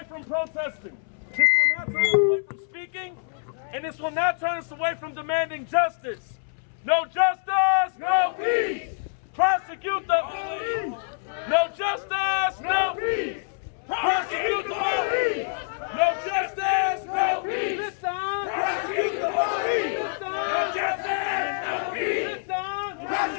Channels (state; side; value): silent; right; 61 dB below the other